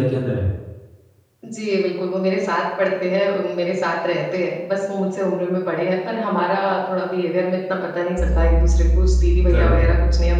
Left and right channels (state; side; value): identical; both; correlation 1.00